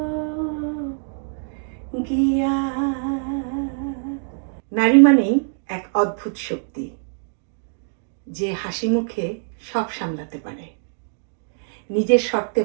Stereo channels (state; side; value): silent; left; digital silence